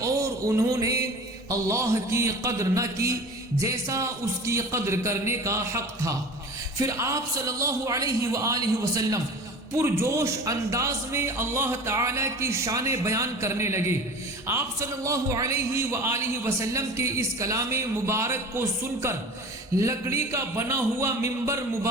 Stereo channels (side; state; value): both; normal; correlation 0.38